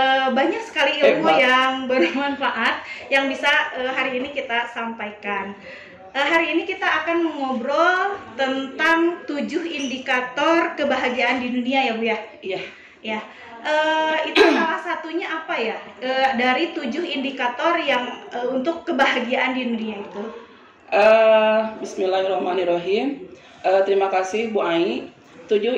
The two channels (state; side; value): identical; both; correlation 1.00